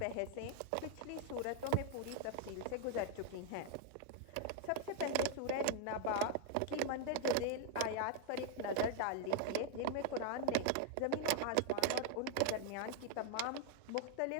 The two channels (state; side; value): different; both; correlation 0.00